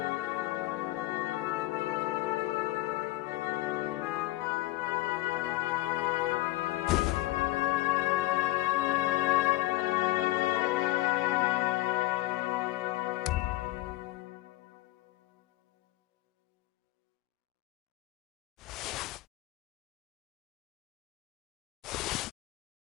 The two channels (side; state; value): right; quieter; 18.3 dB